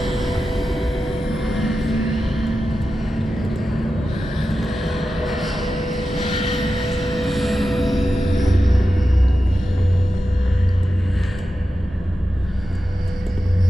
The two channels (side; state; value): both; normal; correlation 0.92